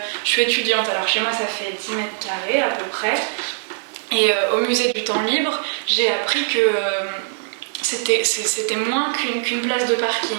je suis étudiante. Alors chez moi, ça fait 10 mètres carrés à peu près. Et au musée du temps libre, j'ai appris que c'était moins qu'une place de parking.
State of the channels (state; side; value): silent; left; digital silence